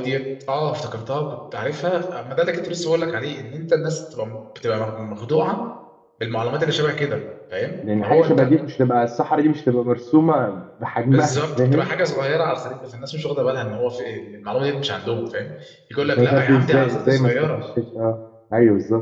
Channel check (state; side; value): identical; both; correlation 1.00